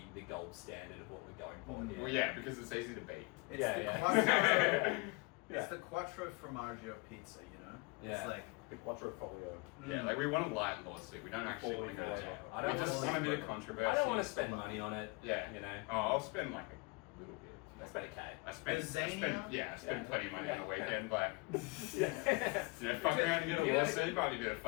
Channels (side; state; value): right; quieter; 27.2 dB